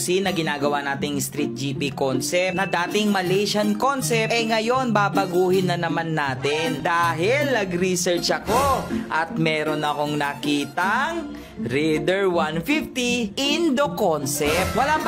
na ginagawa nating Street GP concept na dating Malaysian concept, ngayon babaguhin na naman natin dahil nag-research ako at meron akong nakitang Raider 150 Indo concept. Wala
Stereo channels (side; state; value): both; identical; correlation 1.00